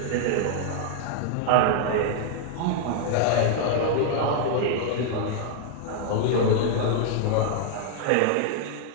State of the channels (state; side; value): different; both; correlation 0.00